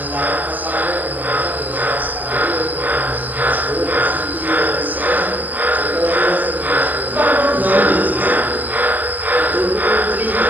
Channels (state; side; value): late; left; 0.083 ms